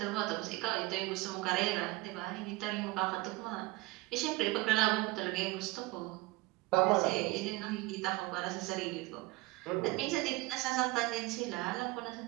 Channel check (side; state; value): left; quieter; 21.6 dB